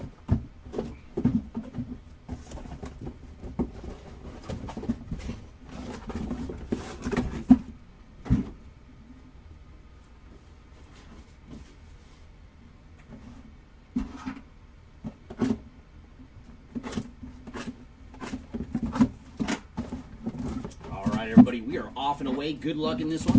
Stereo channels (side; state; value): both; identical; correlation 1.00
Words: Everybody, we are off and away. Good luck in this